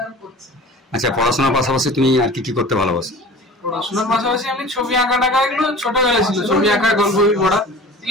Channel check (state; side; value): normal; both; correlation 0.40